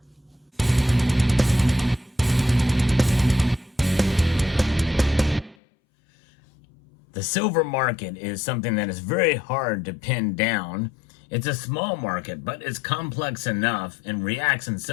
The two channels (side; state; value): right; drops out; at 5.6 s